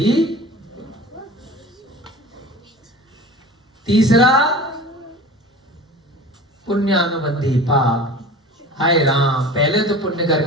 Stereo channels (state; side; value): normal; both; correlation 0.38